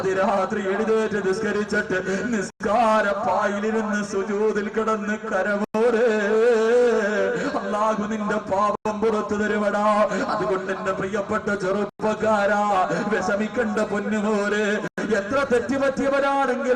എഴുന്നേറ്റ് നിസ്കരിച്ചിട്ട് നിസ്കാരപ്പായിലിരുന്ന് സുജൂദിൽ കിടന്ന് കരമോരെ അല്ലാഹു നിന്റെ പാപം പുറത്തു തരുവടാ. അതുകൊണ്ട് എന്റെ പ്രിയപ്പെട്ട ചെറുപ്പക്കാരാ, വിഷമിക്കണ്ട പൊന്നുമോരെ. എത്ര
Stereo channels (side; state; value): both; identical; correlation 1.00